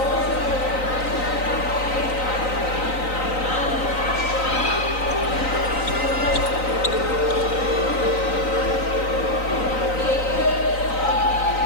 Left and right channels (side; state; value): right; late; 3.9 ms